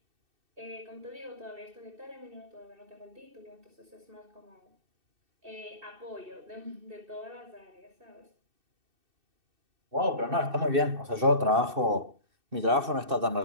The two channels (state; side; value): late; left; 2.6 ms